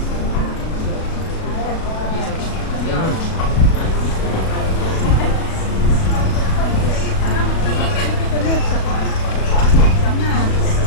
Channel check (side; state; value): right; late; 37 ms